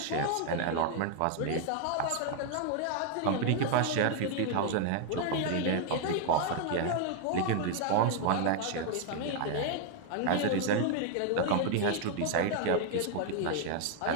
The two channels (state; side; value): different; both; correlation 0.00